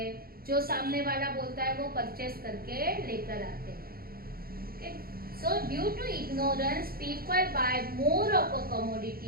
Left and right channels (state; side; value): late; left; 0.43 ms